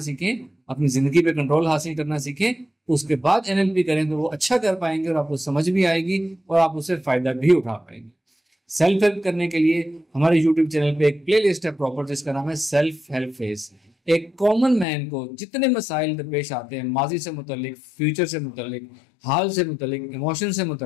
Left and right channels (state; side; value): drops out; right; at 14.9 s